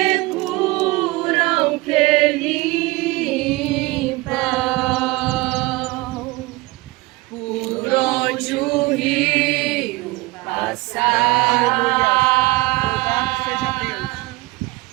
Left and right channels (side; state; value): left; quieter; 22.4 dB